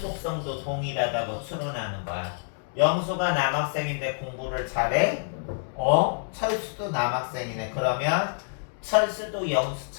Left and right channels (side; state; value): right; silent; digital silence